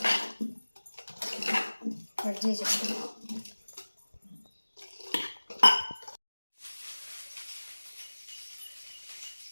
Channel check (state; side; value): inverted; both; correlation -1.00